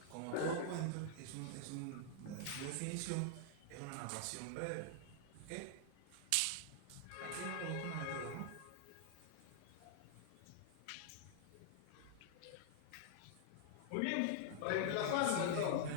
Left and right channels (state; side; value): different; both; correlation -0.01